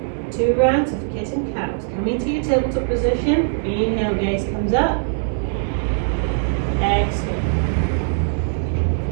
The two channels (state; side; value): silent; left; digital silence